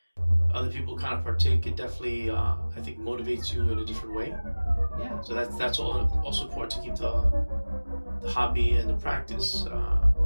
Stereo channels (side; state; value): both; inverted; correlation -1.00